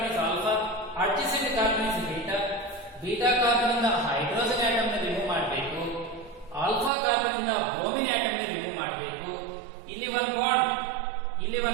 is alpha, adjacent carbon is beta. Beta carbon ಇಂದ hydrogen atom ನ remove ಮಾಡಬೇಕು. Alpha carbon ಇಂದ bromine atom ನ remove ಮಾಡಬೇಕು. ಇಲ್ಲಿ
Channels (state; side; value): drops out; left; at 6.9 s